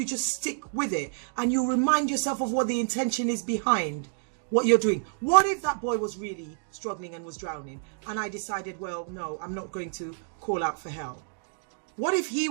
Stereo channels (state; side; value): silent; left; digital silence